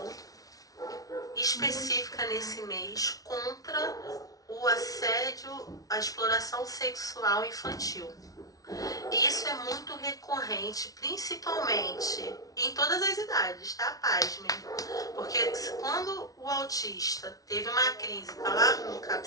específica nesse mês contra o assédio, a exploração sexual infantil. Isso é muito recorrente, principalmente em todas as idades, tá? Pasmem. Porque quando o autista teve uma crise, tá lá no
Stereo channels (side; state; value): right; late; 0.18 ms